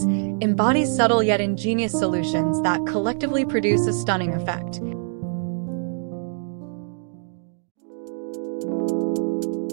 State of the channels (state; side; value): silent; left; digital silence